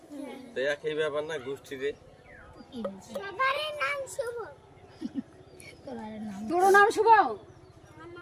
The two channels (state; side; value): identical; both; correlation 1.00